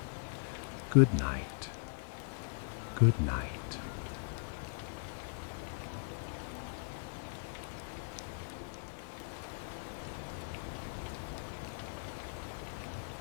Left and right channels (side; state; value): right; silent; 52 dB below the other